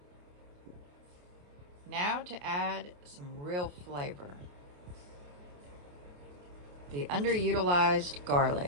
Now to add some real flavor. The underutilized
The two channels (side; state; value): left; late; 28 ms